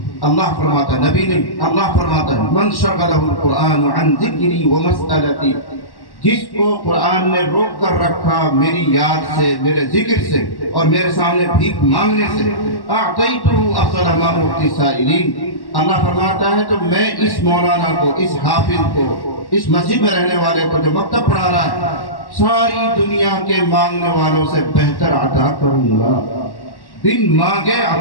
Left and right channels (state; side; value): late; right; 1.1 ms